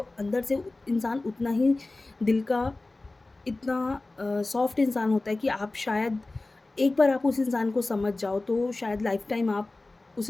अंदर से इंसान उतना ही दिल का इतना सॉफ्ट इंसान होता है कि आप शायद एक बार आप उस इंसान को समझ जाओ तो शायद लाइफ़ टाइम आप उस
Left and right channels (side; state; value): right; quieter; 3.1 dB